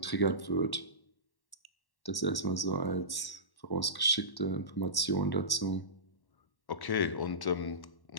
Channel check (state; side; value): late; right; 1.1 ms